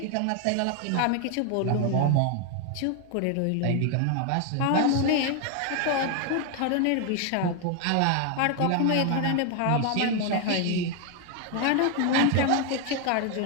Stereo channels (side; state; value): both; different; correlation 0.01